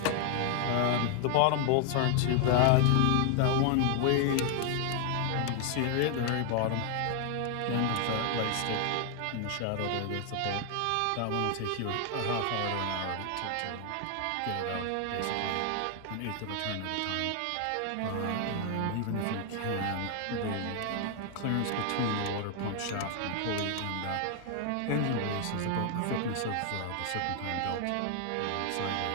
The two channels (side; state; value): both; different; correlation 0.00